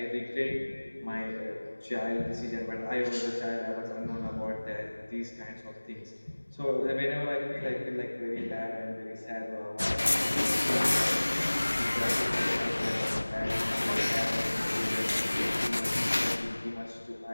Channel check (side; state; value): both; inverted; correlation -1.00